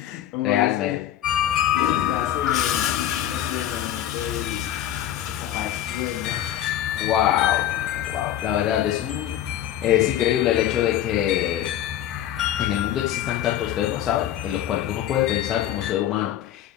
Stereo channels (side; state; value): right; quieter; 11.7 dB